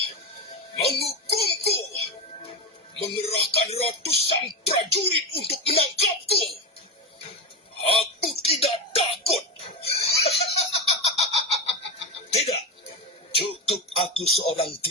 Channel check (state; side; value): normal; both; correlation 0.17